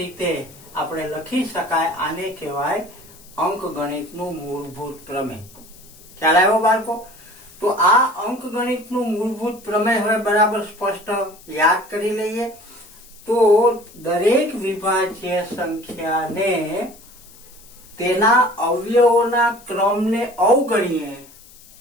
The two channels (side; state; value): left; noise; hiss, 23 dB below the sound